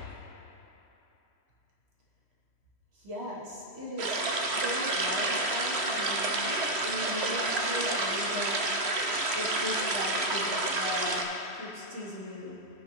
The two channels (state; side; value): late; right; 3.1 ms